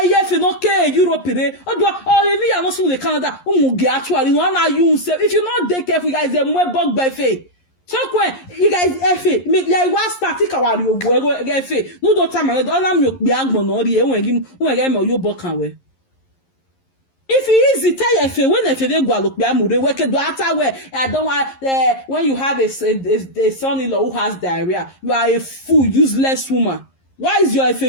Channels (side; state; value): right; late; 11 ms